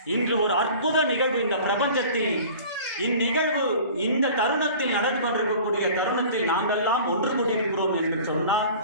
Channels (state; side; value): inverted; both; correlation -0.43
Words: இன்று ஒரு அற்புத நிகழ்வு இந்த பிரபஞ்சத்தில், இந்நிகழ்வு இந்த தருணத்தில் நடந்து கொண்டிருக்கக்கூடிய தருணத்தில் நாங்கள்லாம் ஒன்று கூடியிருக்கிறோம் என்று சொன்னால்,